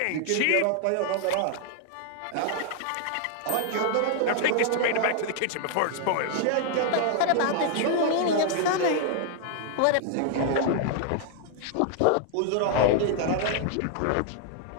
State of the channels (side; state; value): both; different; correlation 0.00